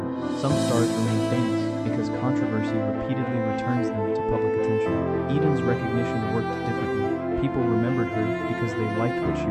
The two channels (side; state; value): both; identical; correlation 1.00